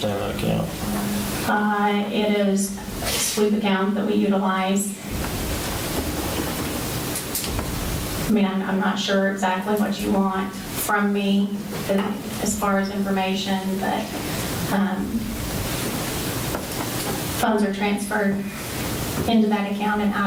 that account. It is a sweep account that we utilize. I mean, I'm not sure exactly what you want from me as far as information, but funds are transferred into that account and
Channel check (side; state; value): both; identical; correlation 1.00